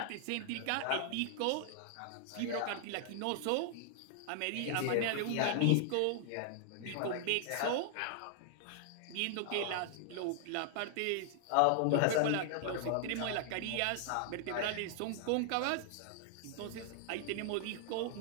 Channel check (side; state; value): both; different; correlation -0.01